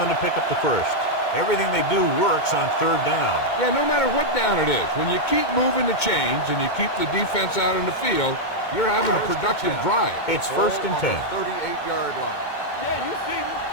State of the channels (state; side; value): late; right; 2.2 ms